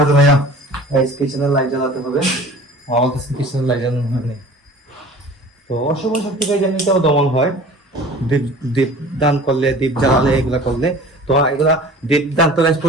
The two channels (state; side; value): normal; both; correlation 0.44